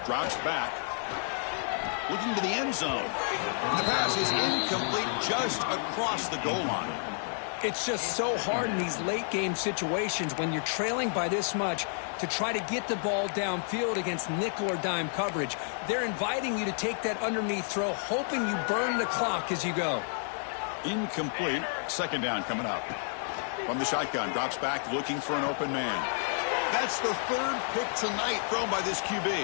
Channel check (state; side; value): silent; right; 58 dB below the other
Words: drops back, looking to the end zone. And the pass is incomplete just across the goal line. It's just so hard in these late game situations when you're trailing by this much to try to get the ball downfield against nickel or dime coverage. They're inviting you to take that underneath throw, hoping you burn the clock as you go. Incomplete. Second down coming up. From the shotgun, drops back looking for an open man. That's the third pick tonight thrown by this QB.